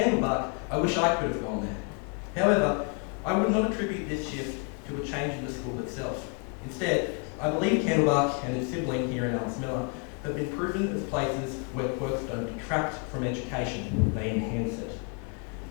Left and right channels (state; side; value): quieter; right; 35.8 dB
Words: I wish I could have gone there." However, I would not attribute this shift to a change in the school itself. Instead, I believe Candlebuck and its sibling here in Alice Miller have been proven as places where quirks don't detract from education, they enhance it.